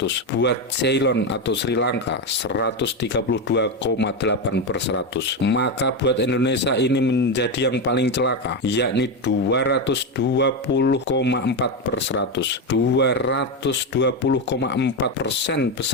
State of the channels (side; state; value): both; normal; correlation 0.11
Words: Buat Ceylon atau Sri Lanka 132,8%. Maka buat Indonesia ini menjadi yang paling celaka, yakni 220,4%. 220,4%